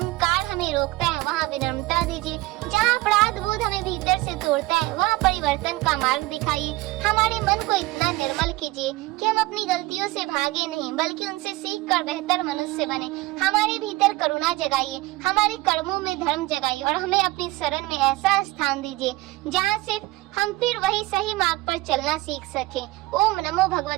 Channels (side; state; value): left; quieter; 19.6 dB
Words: हमें रोकता है वहाँ विनम्रता दीजिए। जहाँ अपराध बोध हमें भीतर से तोड़ता है वहाँ परिवर्तन का मार्ग दिखाइए। हमारे मन को इतना निर्मल कीजिए कि हम अपनी गलतियों से भागे नहीं बल्कि उनसे सीख कर बेहतर मनुष्य बने। हमारे भीतर करुणा जगाइए, हमारे कर्मों में धर्म जगाइए और हमें अपनी शरण में ऐसा स्थान दीजिए जहाँ से हम फिर वही सही मार्ग पर चलना सीख सकें। ओम नमो